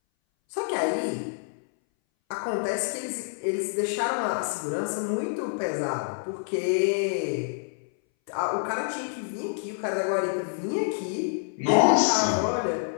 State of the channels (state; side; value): silent; right; 59 dB below the other